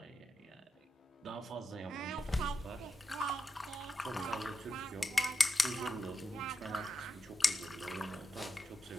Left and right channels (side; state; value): both; normal; correlation 0.87